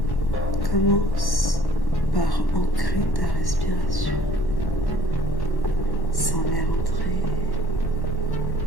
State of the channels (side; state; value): right; late; 1.1 ms